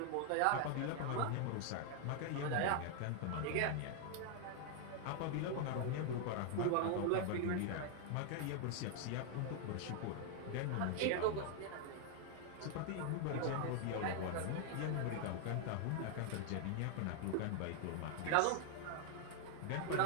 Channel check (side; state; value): both; different; correlation 0.00